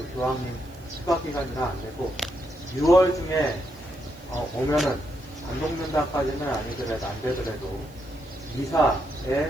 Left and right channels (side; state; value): right; noise; hiss, 27 dB below the sound